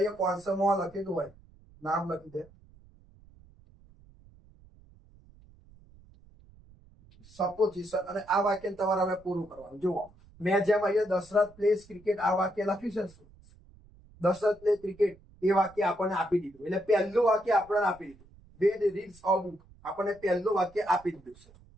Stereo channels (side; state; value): right; noise; rumble, 26 dB below the sound